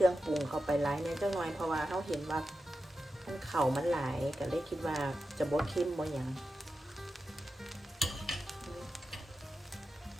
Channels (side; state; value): both; normal; correlation 0.91